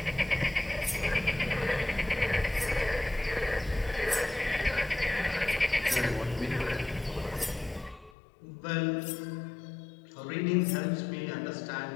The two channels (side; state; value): right; drops out; at 8.2 s